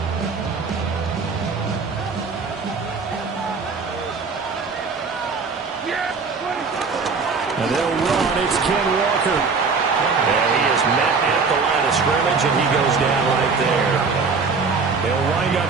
And they'll run. It's Ken Walker. And he is met at the line of scrimmage, and he goes down right there. They'll wind up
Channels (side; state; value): left; quieter; 4.8 dB